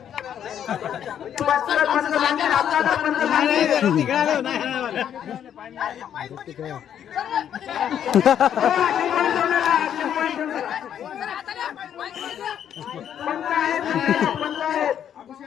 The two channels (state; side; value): quieter; right; 9.5 dB